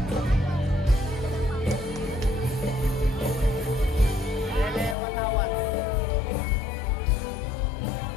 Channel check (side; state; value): right; drops out; at 5.0 s